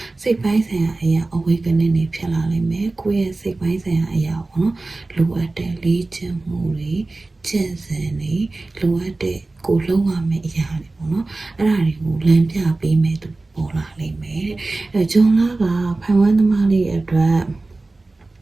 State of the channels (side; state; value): left; quieter; 3.2 dB